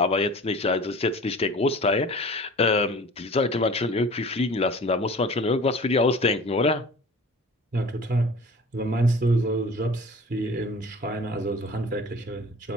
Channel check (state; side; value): normal; both; correlation 0.42